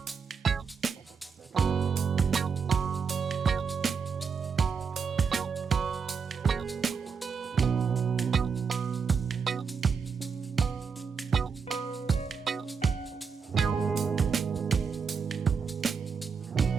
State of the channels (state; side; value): quieter; left; 5.9 dB